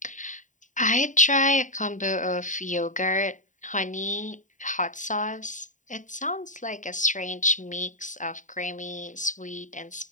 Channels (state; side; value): late; right; 0.36 ms